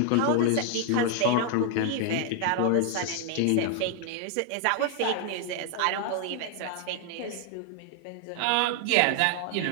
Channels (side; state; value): both; different; correlation 0.00